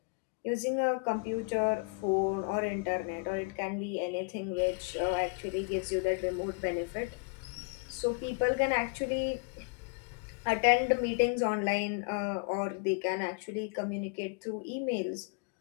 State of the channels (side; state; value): right; quieter; 34.6 dB